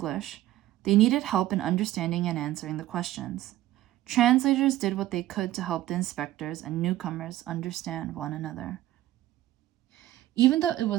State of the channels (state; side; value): quieter; left; 14.7 dB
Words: they needed help in understanding and answering the questions. Translators did what they could to help the inspectors and newcomers understand one another. Even though it